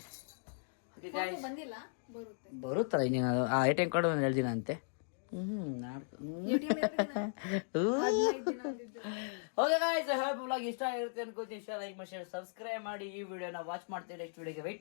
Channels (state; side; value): silent; right; digital silence